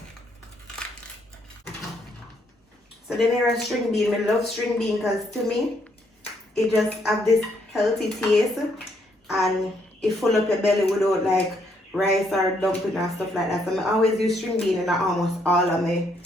So then here is string bean. I love string bean because to me, it just have this healthy taste and it full up your belly without like rice or dumpling and stuff like that. So I always use string bean in almost all of my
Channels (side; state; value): both; normal; correlation 0.72